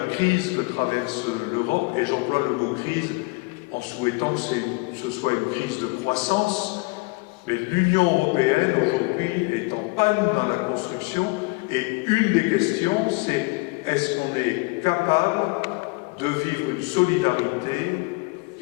crise que traverse l'Europe, et j'emploie le mot crise en souhaitant que ce soit une crise de croissance, mais l'Union européenne aujourd'hui est en panne dans la construction, et une des questions c'est est-ce qu'on est capable de vivre une solidarité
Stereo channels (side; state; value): right; quieter; 27.2 dB